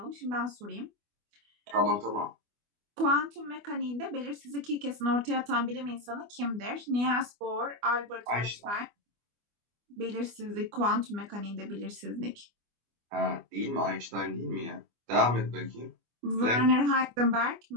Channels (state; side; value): late; left; 24 ms